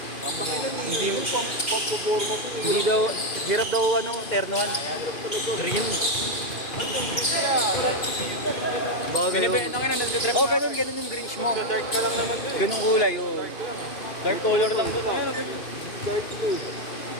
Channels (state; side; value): late; right; 2.5 ms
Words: daw, hirap daw ternohan. Green. Binibenta nga na, nagtitrip Oh, ganun yung greenish mo. Dark ka lang naman doon. Ganung kulay, oh. Dark color lang doon.